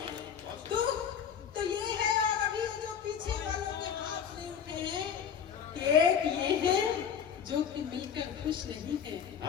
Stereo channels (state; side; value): quieter; right; 7.9 dB